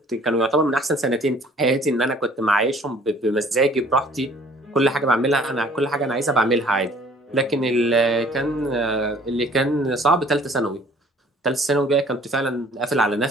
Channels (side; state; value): both; normal; correlation 0.54